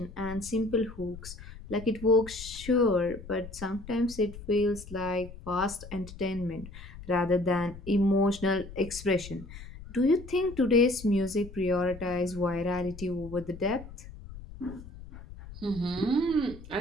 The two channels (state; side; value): noise; left; rumble, 15 dB below the sound